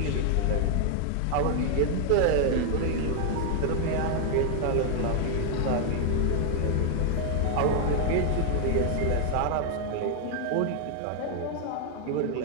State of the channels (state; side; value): different; both; correlation 0.00